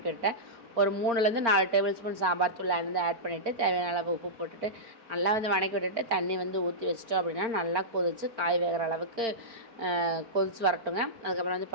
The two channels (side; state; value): left; late; 4.4 ms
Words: விட்டுட்டேன். ஒரு 3லேருந்து 4 டேபிள் ஸ்பூன் சாம்பார் தூள் வந்து ஆட் பண்ணிவிட்டு தேவையான அளவு உப்பு போட்டுட்டு நல்லா வந்து வணக்கி விட்டுட்டு தண்ணி வந்து ஊற்றி வச்சிட்டோம் அப்படின்னா நல்லா கொதிச்சு காய் வேகிற அளவுக்கு கொதிச்சு வரட்டுங்க. அதுக்கப்புறம் வந்து